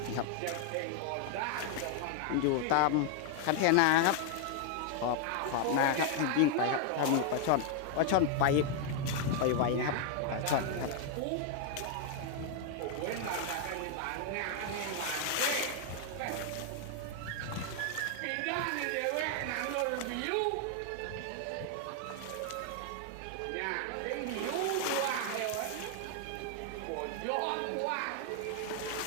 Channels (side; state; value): both; different; correlation 0.00